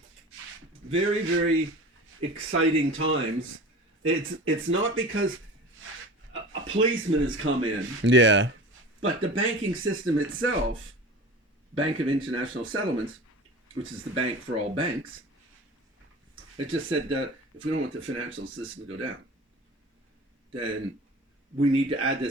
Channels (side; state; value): both; normal; correlation 0.37